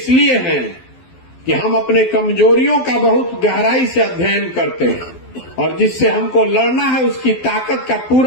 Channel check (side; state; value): right; late; 12 ms